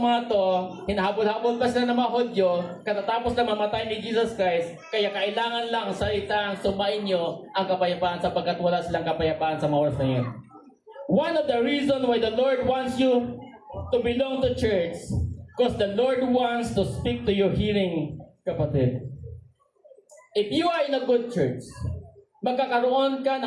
mga to, hinahabol-habol pa sila ng mga Hudyo, katatapos na mamatay ni Jesus Christ, kaya kailangan lang salitang sumain niyo ang kapayapaan sapagkat wala silang kapayapaan sa mga oras na yun. One of the reasons why the Lord wants you to belong to church, because the Lord wants to speak to your hearing, kapatid. If you are in a good church, magkakaroon ka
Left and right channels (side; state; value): both; identical; correlation 1.00